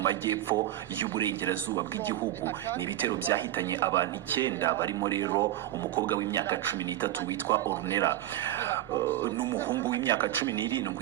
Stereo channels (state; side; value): quieter; left; 13.5 dB